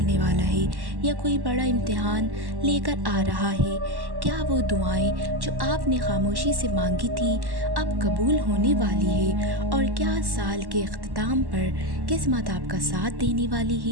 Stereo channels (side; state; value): left; late; 1.1 ms